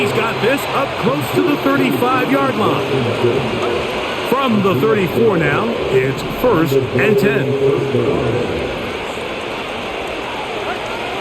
got this up close to the 35-yard line. From the 34 now, it's 1st and 10.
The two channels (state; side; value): identical; both; correlation 1.00